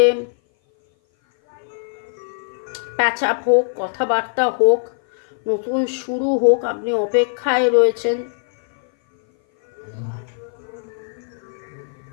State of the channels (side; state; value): right; silent; 57 dB below the other